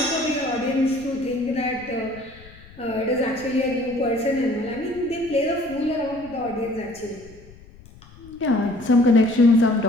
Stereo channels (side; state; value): left; noise; rumble, 22 dB below the sound